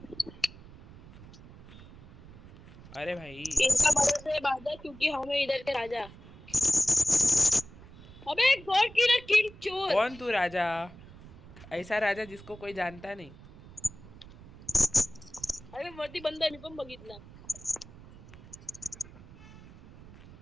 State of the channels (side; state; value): right; noise; rumble, 19 dB below the sound